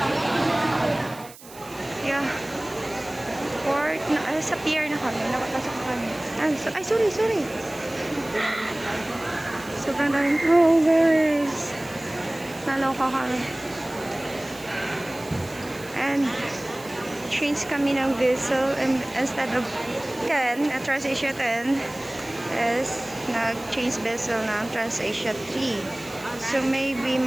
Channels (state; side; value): noise; right; hiss, 19 dB below the sound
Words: Yeah. Port na, sa pier na kami. Nakapasok na kami. Ay, sorry. Sobrang daming progress. Naloka kami. And change kami ng vessel, and instead of 10 at Transasia 10 is nag-change vessel ng Transasia 3. So maybe